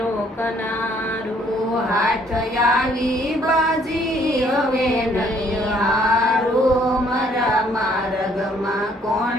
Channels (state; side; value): normal; both; correlation 0.64